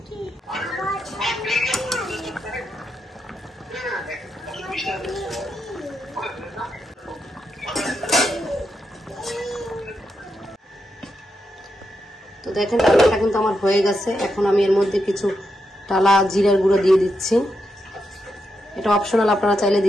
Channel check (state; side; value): normal; both; correlation 0.84